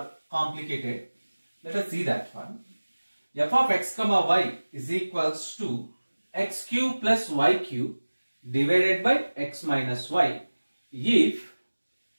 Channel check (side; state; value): both; inverted; correlation -1.00